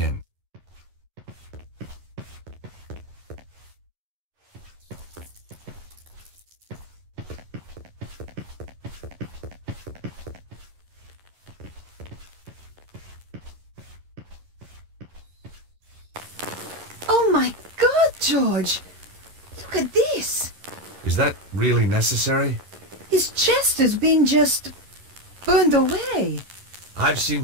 Oh my God, George! Look at this! Is that really necessary? His chest has been just burned away. I've seen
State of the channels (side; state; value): left; late; 11 ms